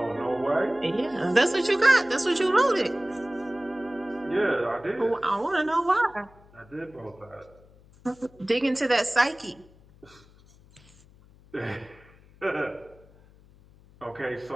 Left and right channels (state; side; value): noise; left; hum, 26 dB below the sound